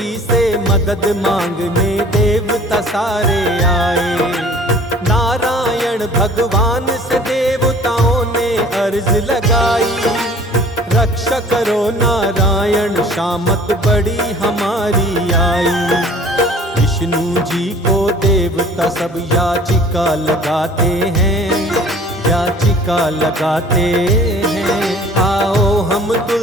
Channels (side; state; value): both; normal; correlation 0.49